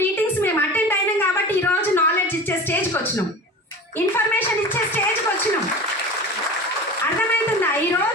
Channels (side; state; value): both; normal; correlation 0.34